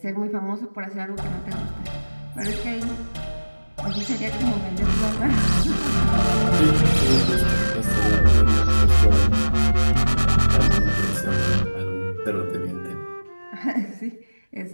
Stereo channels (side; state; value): both; inverted; correlation -1.00